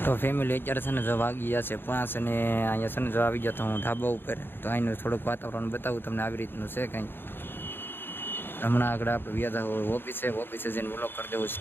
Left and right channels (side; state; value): right; late; 0.10 ms